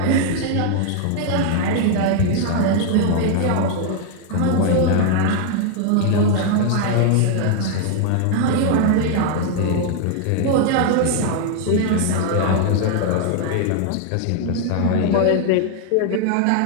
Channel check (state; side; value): different; both; correlation 0.00